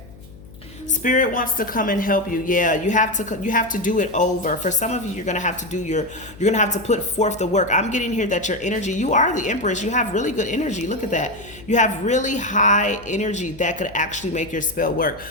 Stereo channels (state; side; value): noise; left; hum, 20 dB below the sound